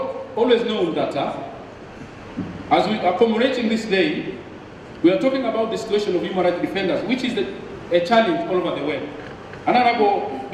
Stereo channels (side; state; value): both; identical; correlation 1.00